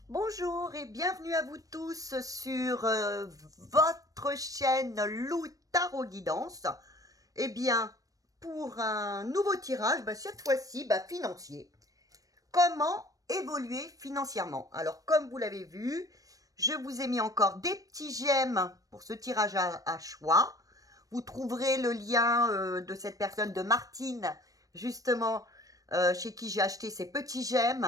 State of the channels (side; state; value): left; late; 0.17 ms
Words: Bonjour et bienvenue à vous tous sur votre chaîne Lou Tarot Guidance. Eh bien, pour un nouveau tirage, cette fois-ci, financier. Comment évoluer financièrement? Alors, comme vous l'avez vu, je vous ai mis encore des petits j'aime pour ce tirage à choix. Vous trouverez le lien de cette personne, de Martine, justement, chez qui j'ai acheté ces petits